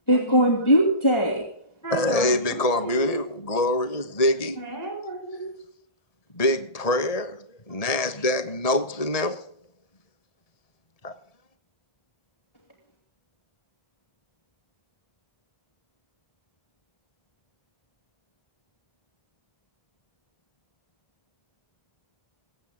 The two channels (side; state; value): right; late; 1.7 ms